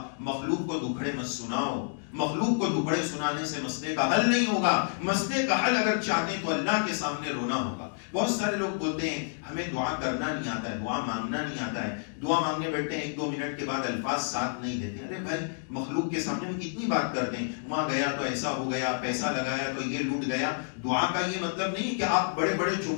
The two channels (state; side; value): silent; right; digital silence